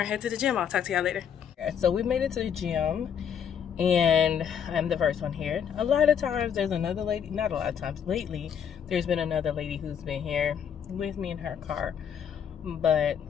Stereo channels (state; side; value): quieter; right; 8.1 dB